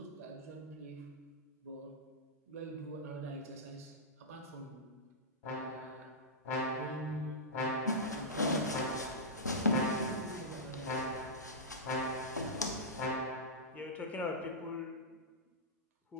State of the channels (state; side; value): normal; both; correlation -0.13